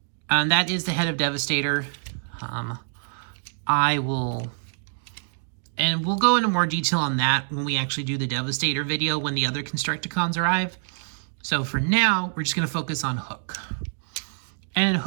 and that is the head of Devastator. And we'll go into more detail on that when we actually do the Devastator video when the other Constructicons arrive. So for now, we're just going to focus on Hook. And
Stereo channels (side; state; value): left; silent; digital silence